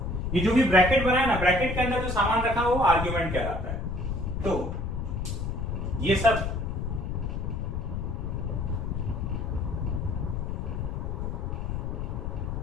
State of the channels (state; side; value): noise; left; rumble, 3 dB below the sound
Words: जो भी ब्रैकेट बना है ना, ब्रैकेट के अंदर जो सामान रखा है वो आर्ग्यूमेंट कहलाता है। तो ये सब